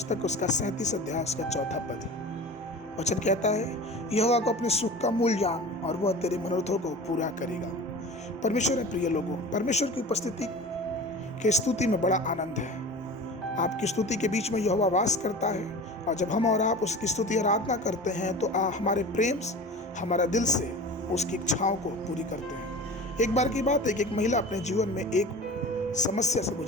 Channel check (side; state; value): both; normal; correlation 0.36